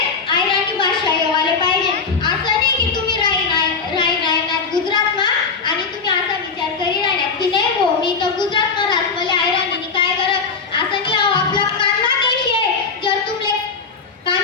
अहिराणी भाषा येवाले पाहिजे. असं नाही की तुम्ही राहणार गुजरात मा आणि तुम्ही असा विचार करी राहणार की नाही हो मी तर गुजरात मा राहत मला अहिराणी काय करत. असं नाही, आपला कान्हा देश आहे. जर तुमले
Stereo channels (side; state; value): right; quieter; 5.0 dB